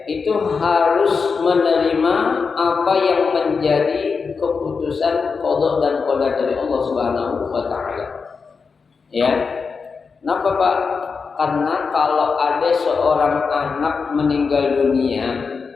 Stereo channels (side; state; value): right; quieter; 5.1 dB